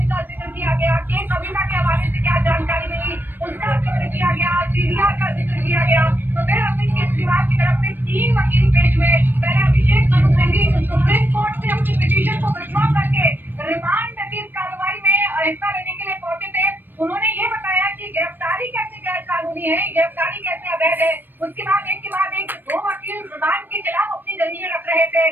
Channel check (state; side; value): late; left; 0.093 ms